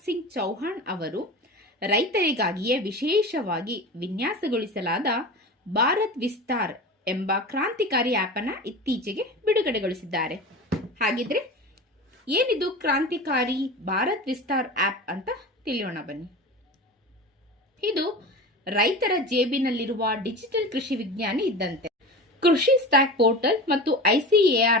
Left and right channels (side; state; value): both; normal; correlation 0.31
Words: ಸಿಂಗ್ ಚೌಹಾಣ್ ಅವರು ರೈತರಿಗಾಗಿಯೇ ವಿಶೇಷವಾಗಿ ವಿನ್ಯಾಸಗೊಳಿಸಲಾದ ಭಾರತ್ ವಿಸ್ತಾರ್ ಎಂಬ ಕ್ರಾಂತಿಕಾರಿ ಆಪ್ ಅನ್ನು ಇತ್ತೀಚೆಗೆ ಬಿಡುಗಡೆಗೊಳಿಸಿದ್ದಾರೆ. ಹಾಗಿದ್ರೆ ಏನಿದು ಕ್ರಾಂತಿಕಾರಿ ಭಾರತ್ ವಿಸ್ತಾರ್ ಆಪ್ ಅಂತ ತಿಳಿಯೋಣ, ಬನ್ನಿ. ಇದು ರೈತರ ಜೇಬಿನಲ್ಲಿರುವ ಡಿಜಿಟಲ್ ಕೃಷಿ ವಿಜ್ಞಾನಿ ಇದ್ದಂತೆ. ಕೃಷಿ ಸ್ಟ್ಯಾಕ್ ಪೋರ್ಟಲ್ ಮತ್ತು